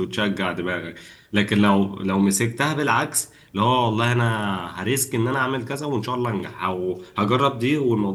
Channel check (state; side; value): identical; both; correlation 1.00